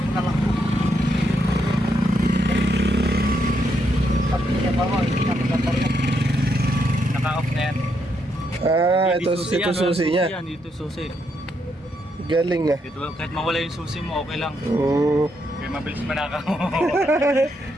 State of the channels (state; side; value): normal; both; correlation 0.78